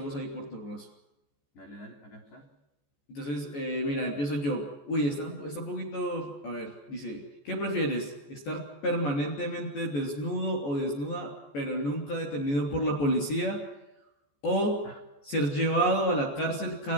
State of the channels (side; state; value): right; late; 14 ms